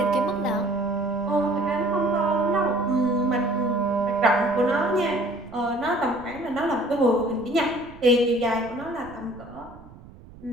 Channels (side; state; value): right; noise; rumble, 20 dB below the sound